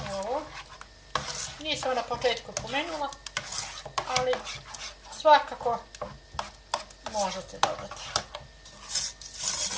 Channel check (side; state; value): both; identical; correlation 1.00